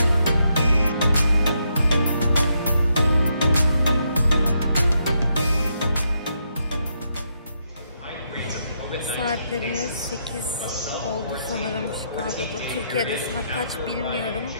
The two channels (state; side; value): inverted; both; correlation -0.78